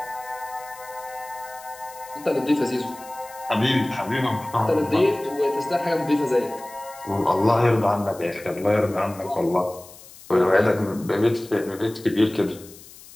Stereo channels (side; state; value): left; noise; hiss, 20 dB below the sound